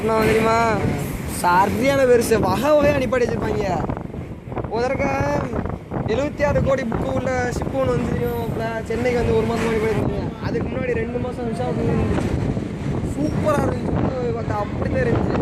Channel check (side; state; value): both; identical; correlation 1.00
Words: தெரியுமா? சரியான பெருசு வகை வகையாக அனுப்பாடி வச்சுருப்பாங்க. முதற்க 76 கோடி புக்கு உள்ள ஷிப்பு ஒன்று வந்து தெரியும். சென்னைக்கு வந்து 1 மாதம் அனுப்பி வச்சுருக்கீங்க. அதுக்கு முன்னாடி 2 மாதம் விசாகப்பட்டினம் இருந்துச்சு. சூப்பராக இருந்துச்சு. பார்த்தா அப்படி தான் இருந்துச்சு.